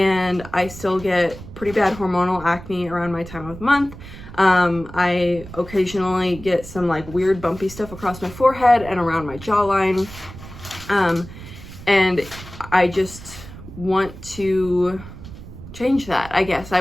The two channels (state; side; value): noise; right; rumble, 15 dB below the sound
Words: I still get pretty bad hormonal acne around my time of month. I occasionally get some like weird bumpy stuff across my forehead and around my jawline, and I just want to change that, I guess.